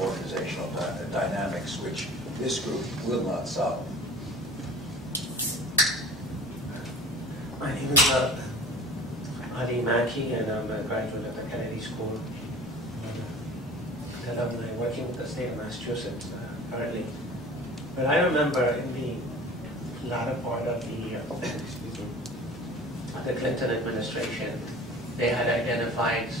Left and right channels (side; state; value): left; noise; rumble, 26 dB below the sound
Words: organizational dynamics, which this group will not solve. My name is Ali Mackey, and I'm a graduate at the Kennedy School. And I'm working with the state of Massachusetts currently. But I remember in the latter part of the Clinton administration, they had identified